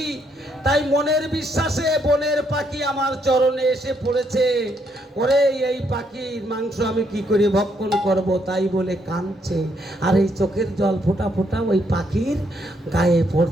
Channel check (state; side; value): normal; both; correlation 0.73